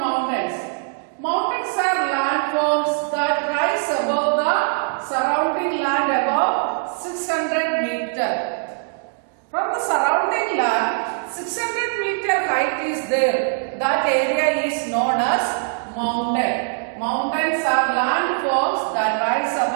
Mountains are landforms that rise above the surrounding land above 600 meters. From the surrounding land, 600 meter height is there. That area is known as mountain. Mountains are landforms that rise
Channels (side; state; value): left; silent; 64 dB below the other